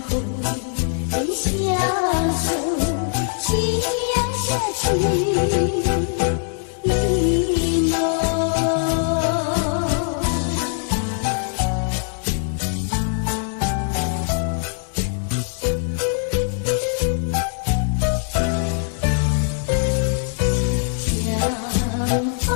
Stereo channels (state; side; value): silent; right; 64 dB below the other